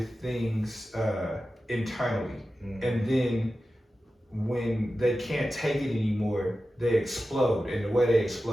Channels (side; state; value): both; normal; correlation 0.93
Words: things internally, and then when they can't take it anymore, they explode, and the way they